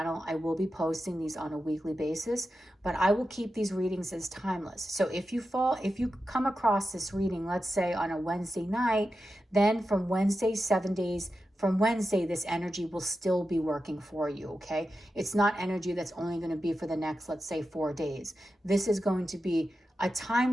I will be posting these on a weekly basis, but I will keep these readings as timeless. So if you come across this reading, let's say on a Wednesday night, then from Wednesday, 7 days from Wednesday, this energy will still be working for you, okay? It's not energy that's only going to be for the next, let's say, 4 days. This is going to be a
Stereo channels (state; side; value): normal; both; correlation 0.91